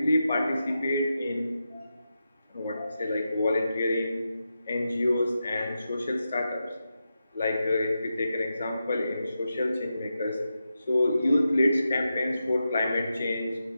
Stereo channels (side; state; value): both; inverted; correlation -0.89